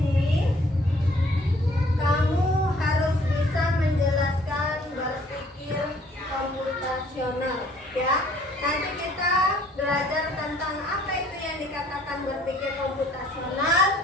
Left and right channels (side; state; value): both; normal; correlation 0.59